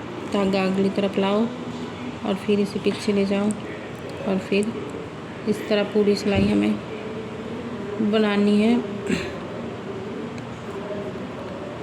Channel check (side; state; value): both; identical; correlation 1.00